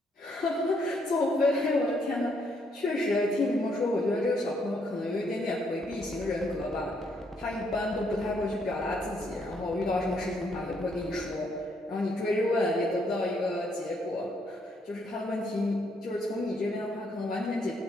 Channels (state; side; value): normal; both; correlation 0.72